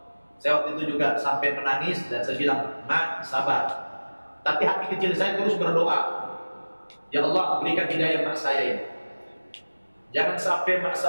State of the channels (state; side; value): inverted; both; correlation -1.00